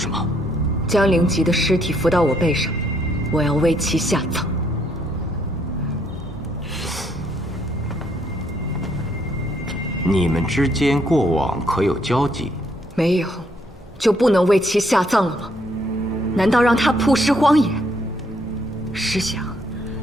么？将灵吉的尸体扶到我背上，我要为其下葬。你们之间过往可有交集？没有，就不能为其下葬了吗？难道让他曝尸荒野？试想，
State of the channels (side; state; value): both; normal; correlation 0.70